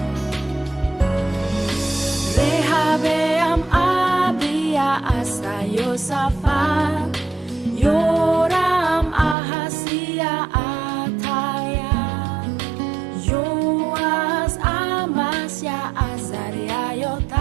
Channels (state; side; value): drops out; left; at 9.3 s